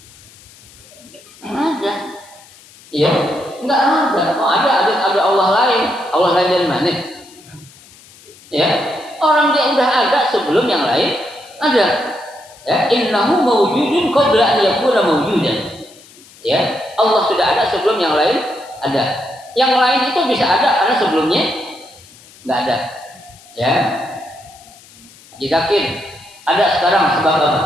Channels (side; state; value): left; noise; hiss, 24 dB below the sound